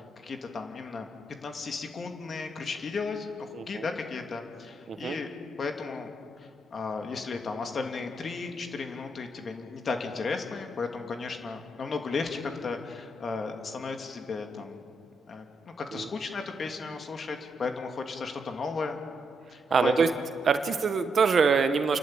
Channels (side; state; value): both; normal; correlation 0.79